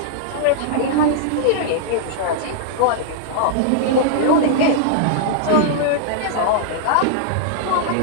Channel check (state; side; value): different; both; correlation -0.01